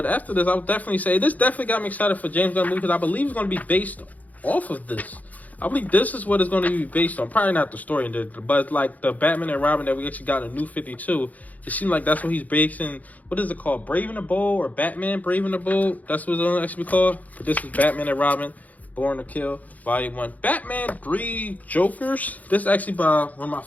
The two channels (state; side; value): late; right; 0.077 ms